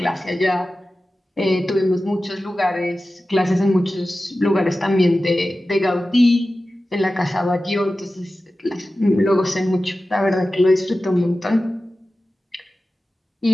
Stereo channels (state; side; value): normal; both; correlation 0.95